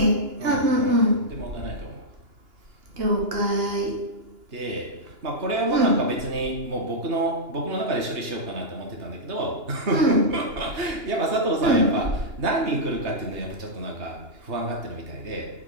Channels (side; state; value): left; late; 2.9 ms